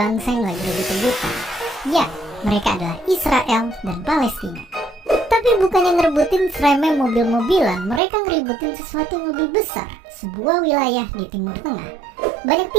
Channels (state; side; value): drops out; left; at 8.0 s